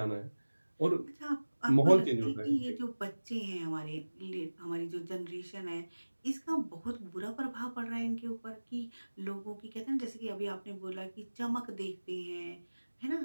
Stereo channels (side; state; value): both; inverted; correlation -1.00